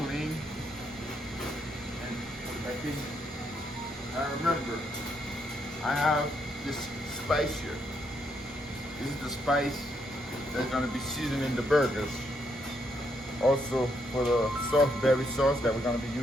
and put it back in. Now remember, I have this spice here. This is the spice that's going to be seasoning the burgers. Also for the soft berry sauce that we're going to be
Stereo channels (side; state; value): both; normal; correlation 0.76